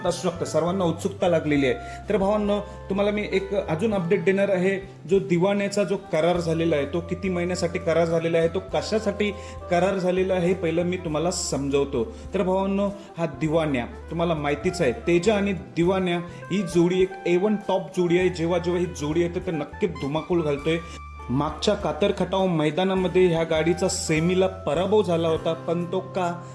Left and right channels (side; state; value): both; identical; correlation 1.00